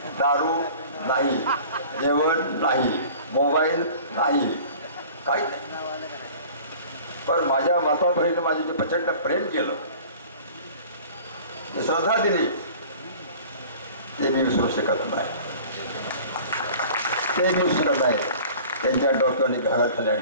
दारू नाही, जेवण नाही, मोबाईल नाही, काही नाही. पण माझ्या माताबहिणीनं माझे जे प्रचंड प्रेम केलं, जी श्रद्धा दिली, ते मी विसरू शकत नाही. ते मी विसरत नाही. त्यांच्या डोक्याने घरात खाली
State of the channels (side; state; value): both; inverted; correlation -0.44